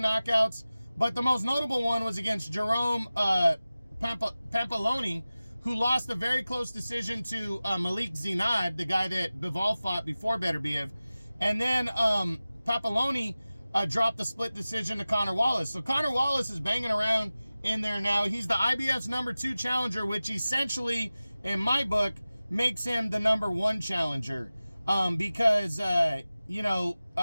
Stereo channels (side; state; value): both; inverted; correlation -0.96